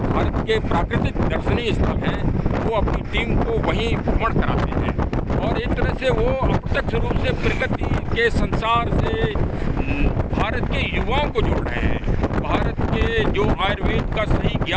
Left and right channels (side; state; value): both; identical; correlation 1.00